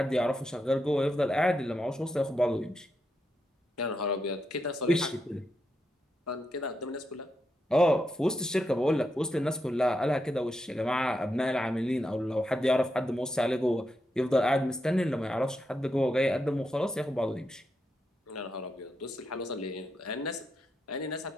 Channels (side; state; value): both; normal; correlation 0.84